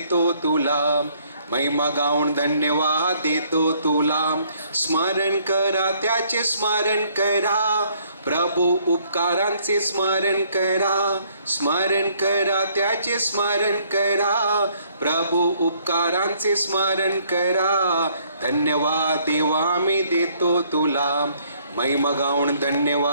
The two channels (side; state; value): both; inverted; correlation -0.65